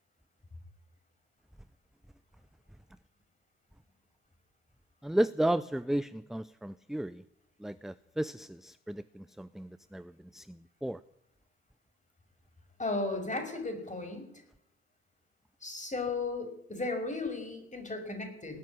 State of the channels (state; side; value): normal; both; correlation 0.71